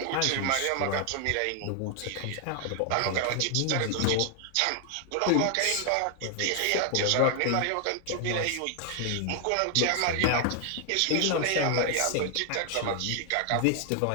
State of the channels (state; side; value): different; both; correlation 0.00